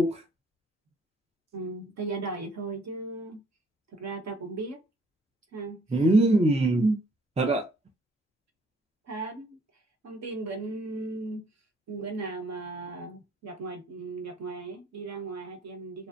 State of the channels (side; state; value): both; normal; correlation 0.64